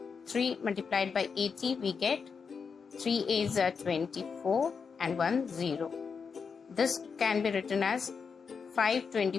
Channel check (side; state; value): right; quieter; 5.7 dB